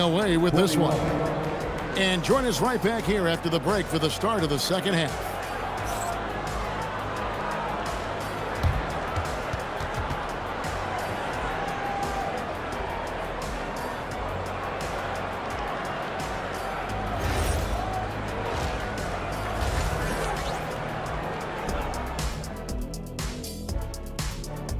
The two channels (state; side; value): identical; both; correlation 1.00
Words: with this one. And join us right back here after the break for the start of the second half.